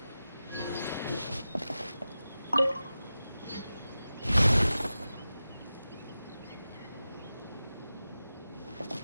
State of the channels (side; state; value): both; inverted; correlation -0.94